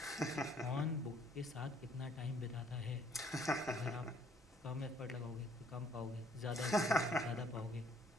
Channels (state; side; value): normal; both; correlation 0.62